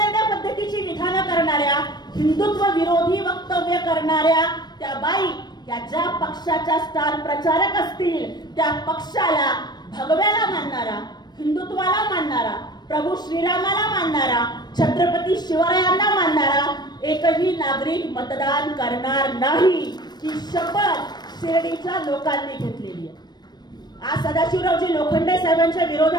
पद्धतीची विधानं करणाऱ्या हिंदुत्व विरोधी वक्तव्य करणाऱ्या त्या बाई या ज्या पक्षाच्या स्टार प्रचारक असतील त्या पक्षाला भगव्याला मानणारा, हिंदुत्वाला मानणारा, प्रभू श्रीरामाला मानणारा, छत्रपती शिवरायांना मानणारा एकही नागरिक मतदान करणार नाही ही शपथ शिर्डीच्या लोकांनी घेतलेली आहे. आज सदाशिवरावजी लोखंडे साहेबांच्या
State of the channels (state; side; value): late; right; 0.20 ms